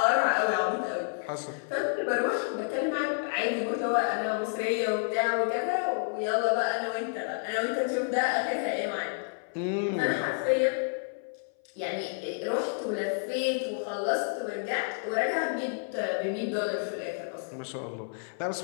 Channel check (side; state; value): right; silent; 58 dB below the other